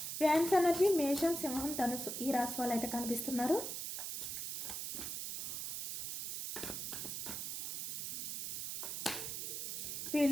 ఫ్యాన్స్ ఎనర్జీ మేషం, సింహం, ధనుసు ఈ రాశి వాళ్ళు అయితే కనిపిస్తున్నారు.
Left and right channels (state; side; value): noise; right; hiss, 4 dB below the sound